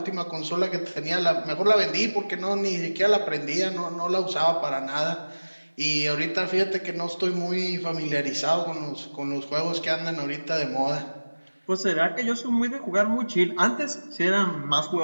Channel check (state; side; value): inverted; both; correlation -1.00